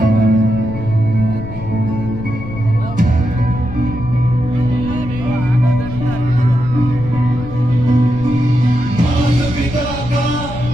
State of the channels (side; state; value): left; noise; rumble, 11 dB below the sound